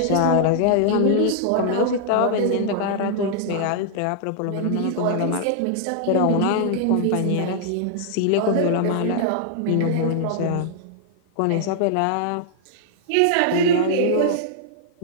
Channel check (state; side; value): different; both; correlation -0.01